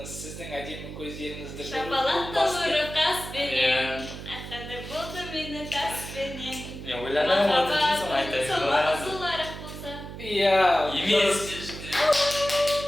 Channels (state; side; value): noise; right; hum, 11 dB below the sound